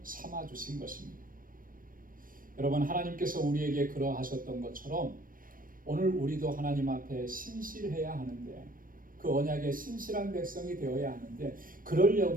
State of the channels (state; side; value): late; left; 0.40 ms